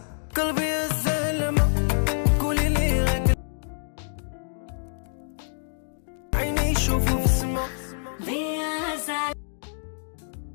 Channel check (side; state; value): right; silent; digital silence